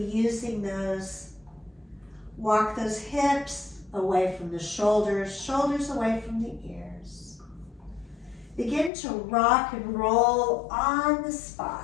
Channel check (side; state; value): right; drops out; at 8.9 s